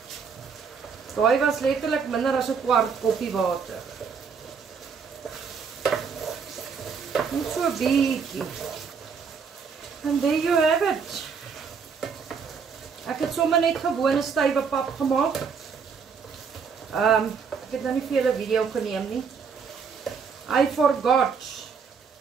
Daai was letterlik minder as 'n kwart koppie water. Net so bietjie. And there you have it. Ek het sommer net gewone stywe pap gemaak. Ek het nou nie vir julle video geneem nie. I forgot.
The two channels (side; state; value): left; quieter; 6.0 dB